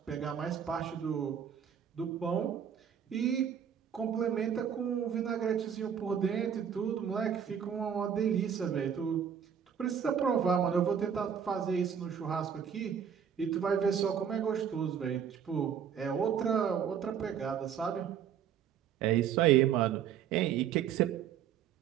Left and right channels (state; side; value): quieter; left; 8.2 dB